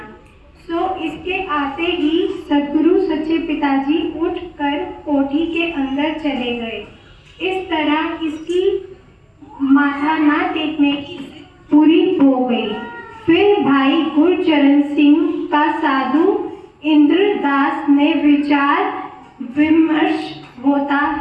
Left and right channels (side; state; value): both; identical; correlation 1.00